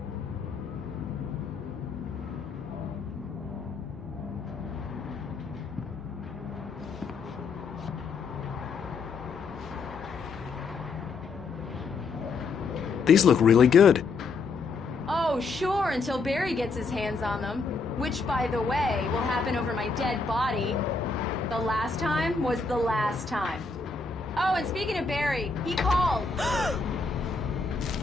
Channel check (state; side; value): quieter; right; 4.4 dB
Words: These look really good. Oh, sure, until Barry gets his hands on them. Which, by the way, will happen over my dead body. The last time was the last time. Oh, and speaking of Barry, he called.